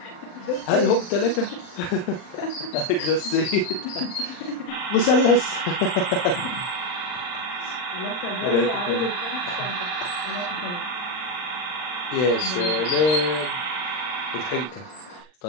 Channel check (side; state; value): right; late; 39 ms